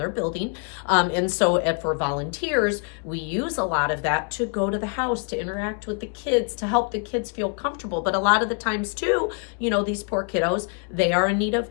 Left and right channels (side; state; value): right; quieter; 39.9 dB